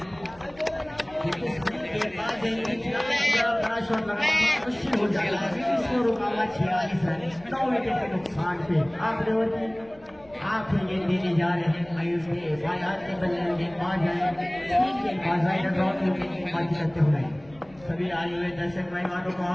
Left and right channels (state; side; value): noise; left; rumble, 25 dB below the sound